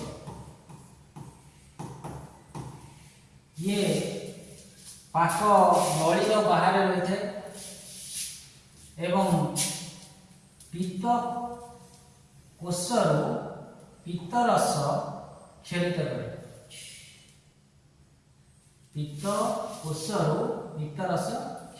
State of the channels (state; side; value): identical; both; correlation 1.00